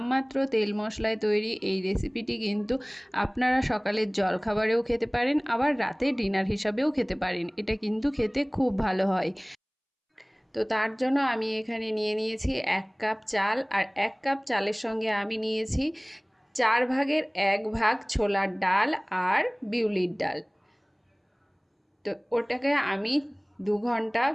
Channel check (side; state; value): both; identical; correlation 1.00